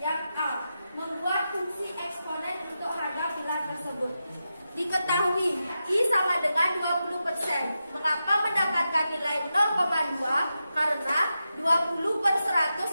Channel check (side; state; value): both; inverted; correlation -0.89